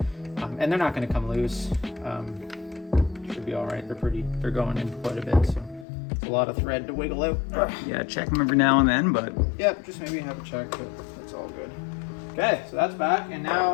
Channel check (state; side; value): drops out; right; at 5.9 s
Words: And they're not gonna come loose. Should be all right. They're going in quite a bit, so it's a lot of thread to wiggle out. Yeah, check them every now and then, but Yep, just maybe have a check, but that's all good. Okay, so that's back, and